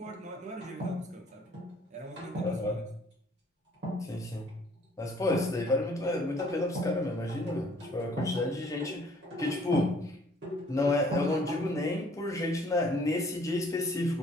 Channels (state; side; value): normal; both; correlation 0.59